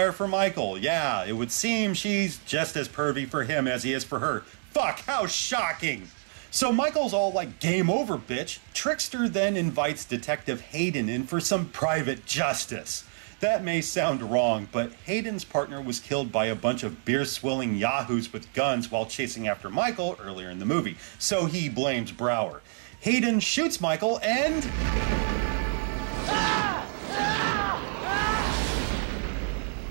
for Michael. Yeah, it would seem she's just as pervy for him as he is for her. Fuck, how shocking! So Michael's all like, game over, bitch. Trickster then invites Detective Hayden in for some private justice. That may sound wrong, but Hayden's partner was killed by a bunch of beer-swilling yahoos with guns while chasing after Michael earlier in the movie, so he blames Brower. Hayden shoots Michael and...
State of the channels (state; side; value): silent; left; digital silence